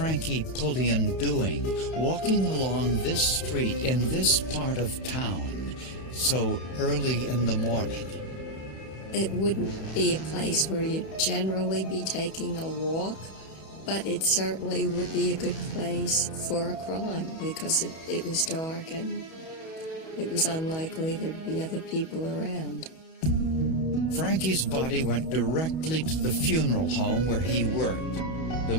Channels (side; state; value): right; late; 31 ms